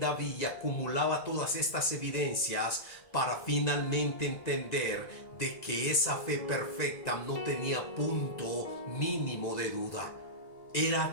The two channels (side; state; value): right; late; 1.9 ms